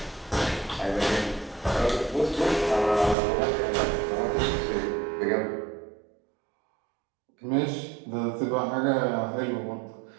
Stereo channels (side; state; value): left; drops out; at 3.2 s